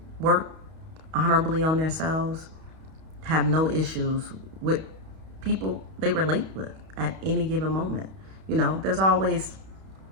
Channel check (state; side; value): late; left; 31 ms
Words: work honorably on themselves have no issues with people they relate with at any given moment. There's always